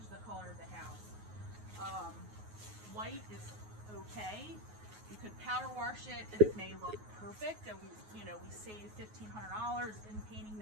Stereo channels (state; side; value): late; left; 9.4 ms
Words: the color of the house. White is okay. You could power wash it and it may look perfect, and we save $1,500 in painting